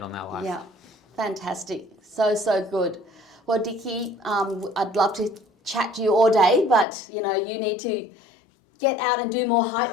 on their life. Yeah, fantastic. So good. Well, Dickie, I'd love to chat to you all day, but you know, you need to get out and do more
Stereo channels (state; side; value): drops out; right; at 6.9 s